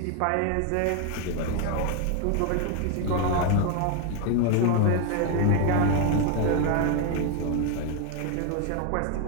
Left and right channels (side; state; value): both; different; correlation 0.01